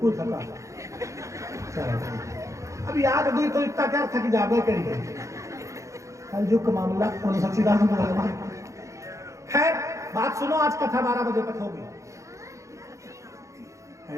थका। अब याद हुई तो इतना क्या थक जाबे करिए। कल जो मामला उन सच्चिदानंद भगवान। खैर बात सुनो, आज कथा 12 बजे तक होगी।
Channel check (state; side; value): late; left; 0.15 ms